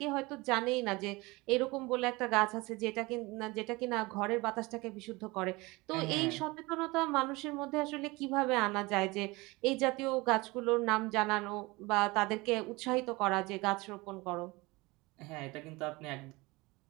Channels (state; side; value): quieter; left; 23.3 dB